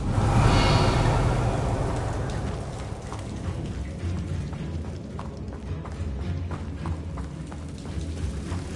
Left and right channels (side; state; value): both; identical; correlation 1.00